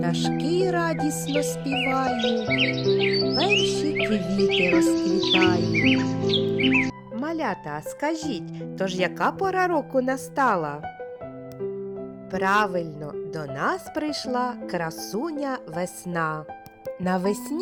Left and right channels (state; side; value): identical; both; correlation 1.00